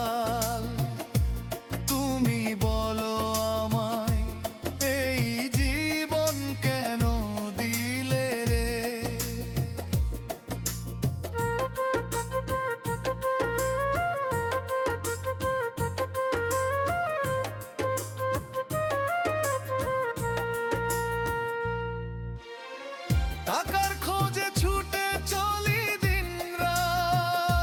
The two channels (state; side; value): identical; both; correlation 1.00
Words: তুমি বলো আমায়, এই জীবন কেন দিলে রে? টাকার খোঁজে ছুটে চলি দিনরাত,